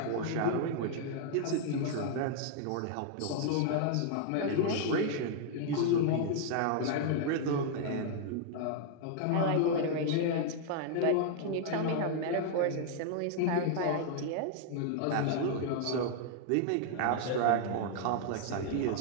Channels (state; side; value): different; both; correlation -0.01